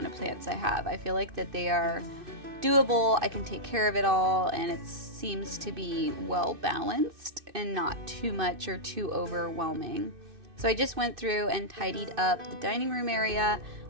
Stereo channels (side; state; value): left; late; 2.6 ms